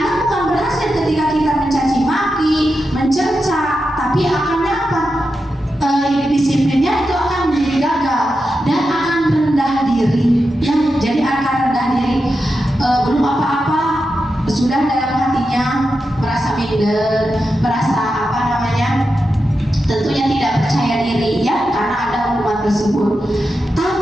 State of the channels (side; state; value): both; normal; correlation 0.89